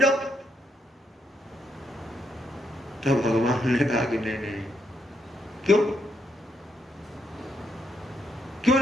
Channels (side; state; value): both; normal; correlation 0.77